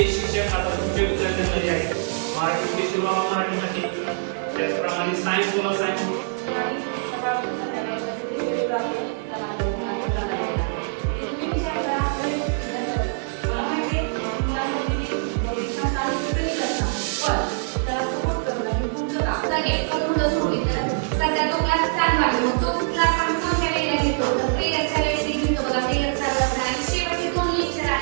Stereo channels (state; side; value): silent; left; 63 dB below the other